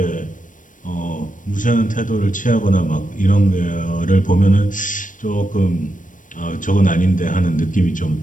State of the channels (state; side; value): late; right; 0.38 ms